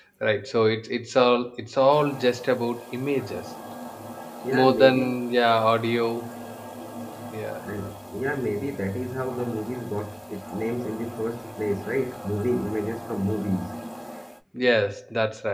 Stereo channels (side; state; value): both; identical; correlation 1.00